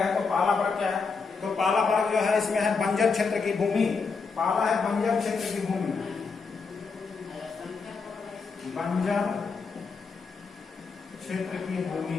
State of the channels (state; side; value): quieter; right; 4.9 dB